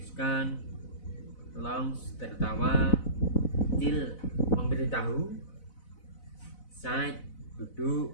launch, tertawa, till, memberitahu, sight, duduk,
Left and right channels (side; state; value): right; late; 4.0 ms